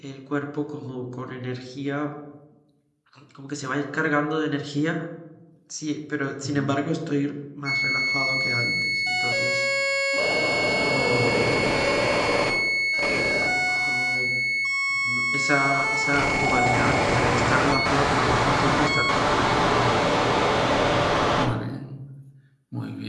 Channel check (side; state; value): both; identical; correlation 1.00